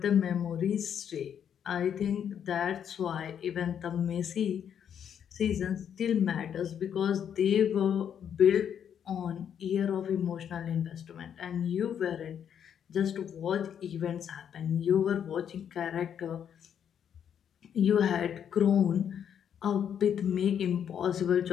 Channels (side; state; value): right; quieter; 8.6 dB